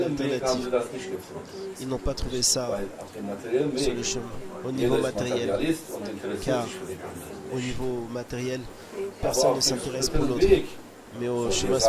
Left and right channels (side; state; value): both; identical; correlation 1.00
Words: materiellen Weg haben sie alternative. das nicht gefunden. Ils n'ont pas trouvé ça Weil auf dem materiellen sur le Weg chemin. Au jeder niveau ist matériel, Materialist und interessiert Car sich für den anderen. au niveau matériel, Aber personne auf ne dem s'intéresse pour spirituellen l'autre. Weg Mais au chemin